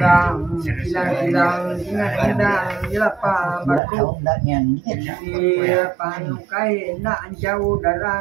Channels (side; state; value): left; drops out; at 3.8 s